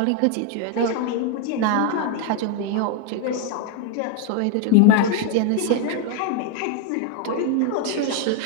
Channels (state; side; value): different; both; correlation 0.01